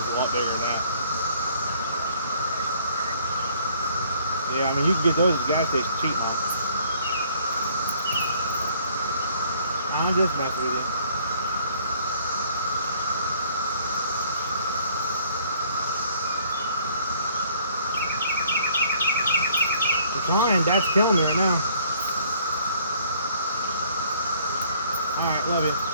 a lot bigger than that. Yeah, I mean, you can get those at the gas station cheap, huh? I'm just messing with you. I'm trying. Dad's killing me right now. Alright, love you.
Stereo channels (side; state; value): both; inverted; correlation -0.60